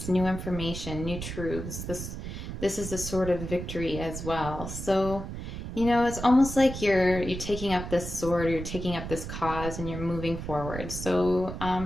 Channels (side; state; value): right; noise; rumble, 7 dB below the sound